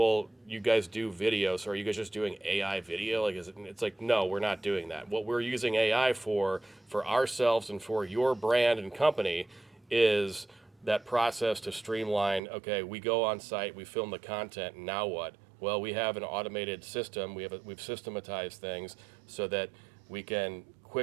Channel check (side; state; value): left; drops out; at 12.4 s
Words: you guys do video, so are you guys just doing AI video? Like, it's like, no, we're not doing that. What we're using AI for ourselves and for your brand and company, is that process to streamline. Okay, we go on site, we film the content, and now what? Well, we have an automated system. We've systematized things so that we can